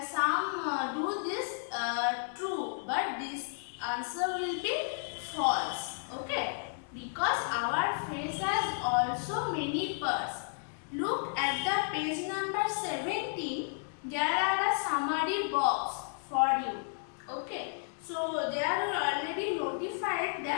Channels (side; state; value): right; silent; 56 dB below the other